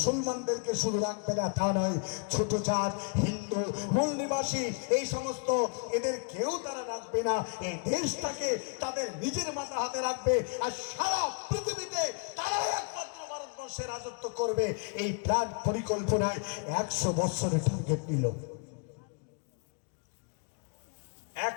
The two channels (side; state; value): right; quieter; 37.6 dB